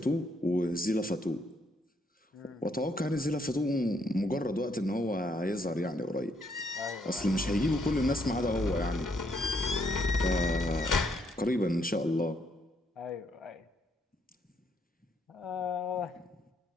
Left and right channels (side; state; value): both; normal; correlation 0.73